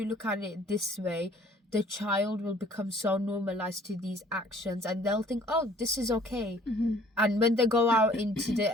look at it this way, the child will become so normalized to these actions, and they'll think, oh, this is okay. And when they go out into the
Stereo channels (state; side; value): normal; both; correlation 0.56